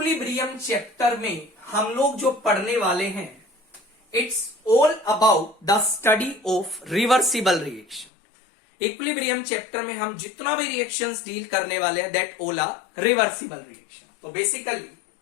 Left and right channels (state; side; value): drops out; right; at 8.1 s